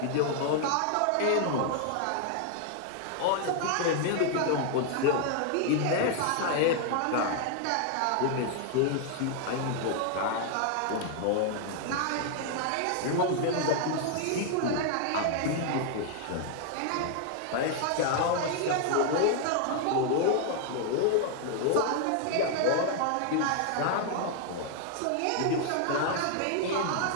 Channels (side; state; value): both; different; correlation 0.00